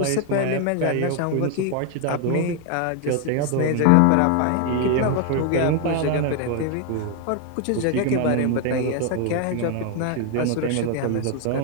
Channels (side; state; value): both; different; correlation 0.01